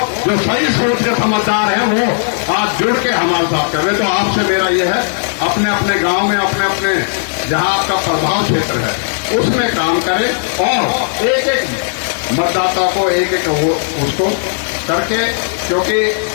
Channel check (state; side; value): silent; right; digital silence